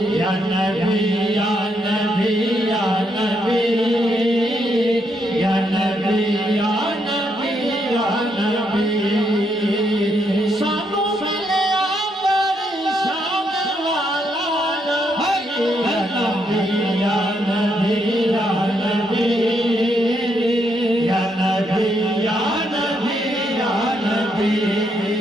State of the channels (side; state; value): both; normal; correlation 0.77